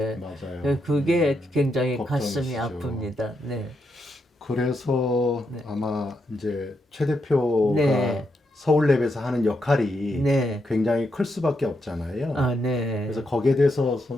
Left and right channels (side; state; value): both; normal; correlation 0.82